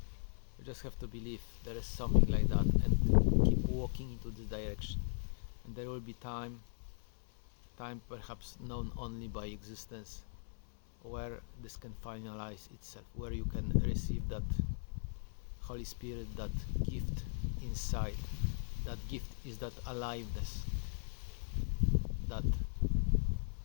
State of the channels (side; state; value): right; silent; 52 dB below the other